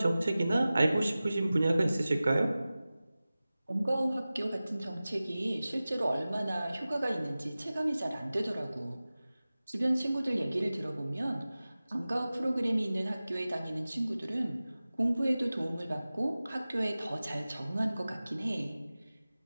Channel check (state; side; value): inverted; both; correlation -0.97